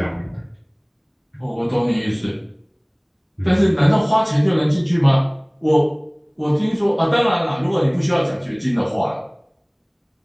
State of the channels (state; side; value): identical; both; correlation 1.00